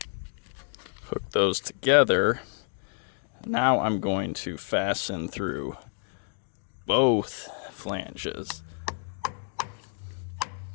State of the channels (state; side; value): silent; right; digital silence